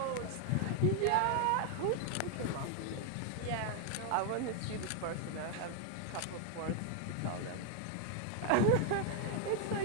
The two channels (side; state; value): both; different; correlation 0.00